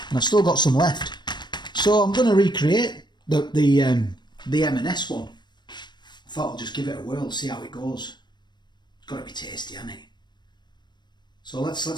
And I've still got some left. So I'm going to recreate the M&S one. I thought I'll just give it a whirl, see how it goes. It's got to be tasty, hasn't it? So let's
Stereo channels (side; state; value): right; late; 0.21 ms